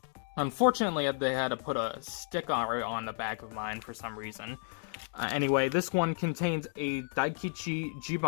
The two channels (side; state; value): right; silent; 56 dB below the other